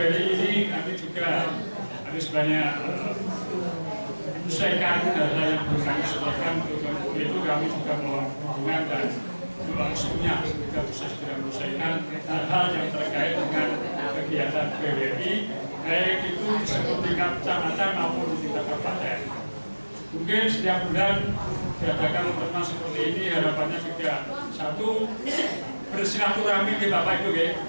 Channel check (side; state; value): both; inverted; correlation -1.00